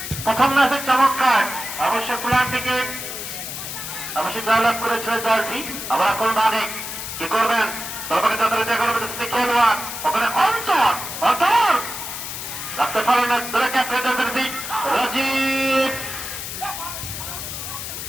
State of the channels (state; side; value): noise; left; hiss, 7 dB below the sound